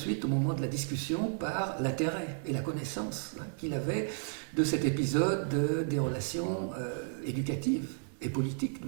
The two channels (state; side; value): silent; left; digital silence